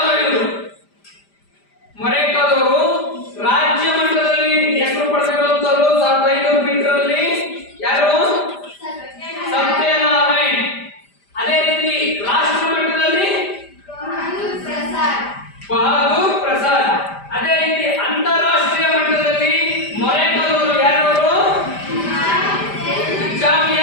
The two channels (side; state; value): right; late; 5.0 ms